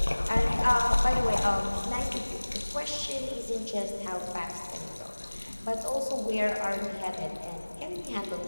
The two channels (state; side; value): inverted; both; correlation -1.00